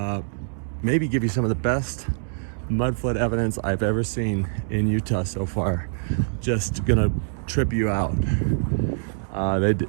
maybe give you some of the best mud flood evidence I've ever seen in Utah so far. Just gonna trip you out.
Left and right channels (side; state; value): left; silent; digital silence